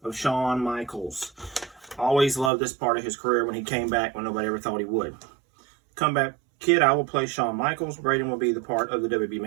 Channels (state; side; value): drops out; left; at 2.5 s